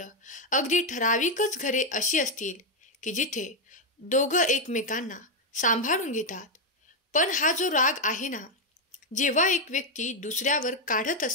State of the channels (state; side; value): normal; both; correlation 0.03